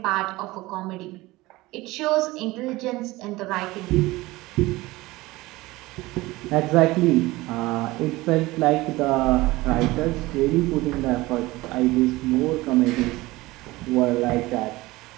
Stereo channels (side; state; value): left; quieter; 19.8 dB